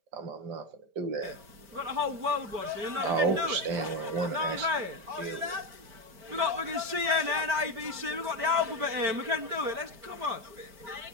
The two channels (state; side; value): late; left; 5.1 ms